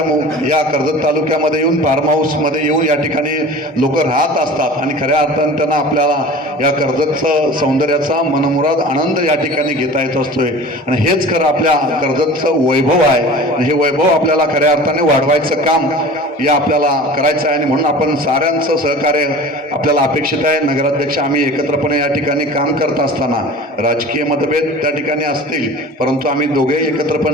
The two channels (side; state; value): both; normal; correlation 0.39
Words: या कर्जत तालुक्यामध्ये येऊन फार्म हाऊसमध्ये येऊन या ठिकाणी लोक राहत असतात आणि खऱ्या अर्थाने त्यांना आपल्याला या कर्जतचं सौंदर्याचा मनमुराद आनंद या ठिकाणी घेता येत असतोय. आणि हेच खरं आपल्या कर्जतचं वैभव आहे आणि हे वैभव आपल्याला खऱ्या अर्थाने वाढवायचं काम या आपल्याला करायचं आहे. आणि म्हणून आपण साऱ्यांचं सहकार्य आपल्याला अपेक्षित आहे. नगराध्यक्ष आम्ही एकत्रपणे या ठिकाणी काम करत असताना राजकीय मतभेद त्या ठिकाणी असतील, परंतु आम्ही दोघेही एकत्र